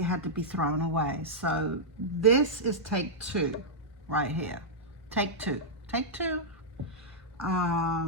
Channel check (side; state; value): both; normal; correlation -0.09